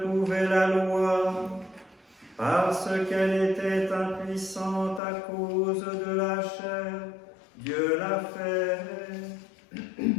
la loi, parce qu'elle était impuissante à cause de la chair, Dieu l'a fait.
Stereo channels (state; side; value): drops out; right; at 5.0 s